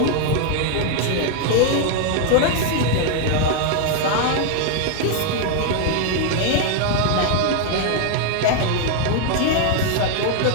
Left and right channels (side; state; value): both; different; correlation 0.00